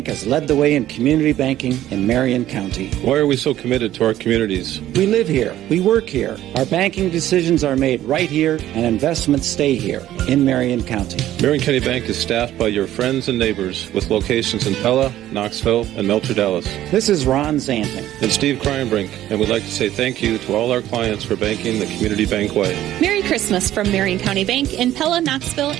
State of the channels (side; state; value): left; quieter; 13.2 dB